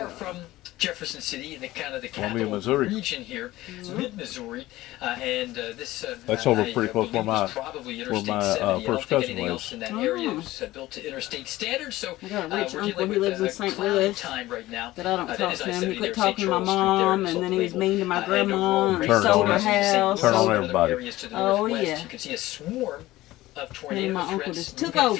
from Jefferson City in the kind of the Columbia, capital Missouri. region here, mid-Missouri, and this That's over I pretty close believe where was my- probably where Interstate my, 70. I don't first think cousin anything lives. else in that Oh. area is built to interstate standards. So I got a rich we're uncle. dealing He with lives in a St. cloudy Louis. time right now. But I don't That talk is to him. He I-70 quit there, talking St. to my Charles Street there, mom, sold and then the he was label. mean to my And grandma, overall, and he Turn sold on her everybody. house. Turn on sold- everybody. Areas to the Oh, northwest. yeah. You can see a swarm of tornado my uncle threats just took moving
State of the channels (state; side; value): quieter; right; 17.0 dB